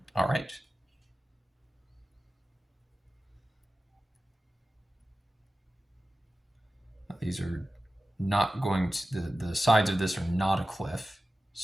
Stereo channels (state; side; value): normal; both; correlation 0.94